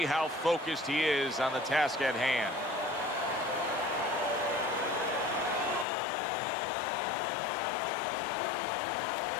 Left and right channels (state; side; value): drops out; right; at 5.9 s